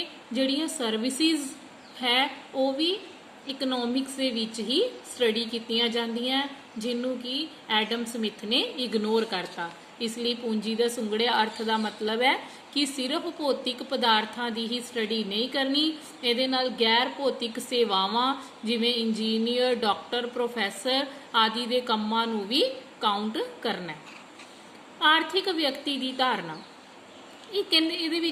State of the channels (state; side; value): identical; both; correlation 1.00